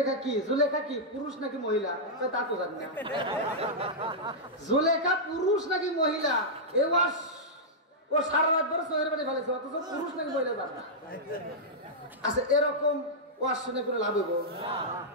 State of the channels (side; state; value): both; normal; correlation -0.09